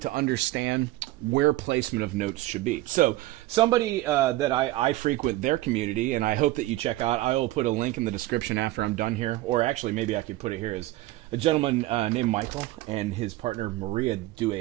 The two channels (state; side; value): quieter; left; 17.2 dB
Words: understand where placement of notes should be. So somebody that I frequent their community, and I hope that you check out, I will put a link in the description after I'm done here, or actually maybe I could put it here, is a gentleman named Michael and his partner Maria do